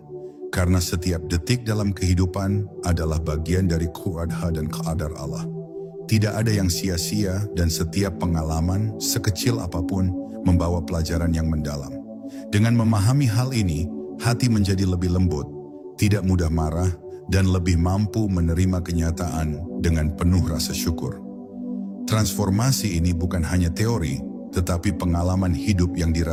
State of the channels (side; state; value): both; identical; correlation 1.00